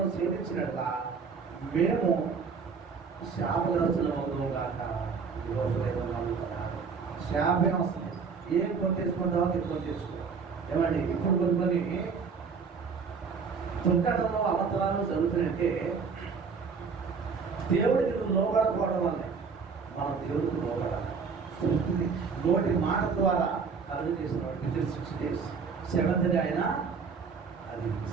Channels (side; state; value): left; quieter; 5.5 dB